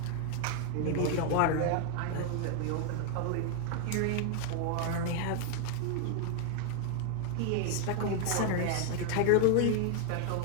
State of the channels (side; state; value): both; different; correlation 0.00